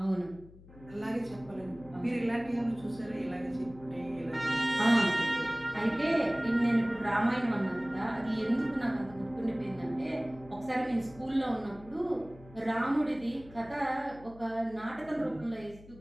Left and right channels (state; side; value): noise; left; hum, 21 dB below the sound